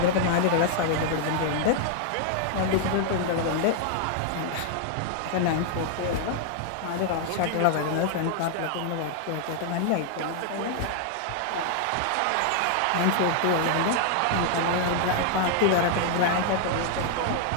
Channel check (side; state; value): both; different; correlation 0.00